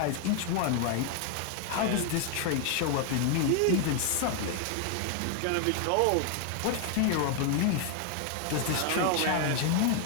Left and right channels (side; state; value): both; different; correlation 0.00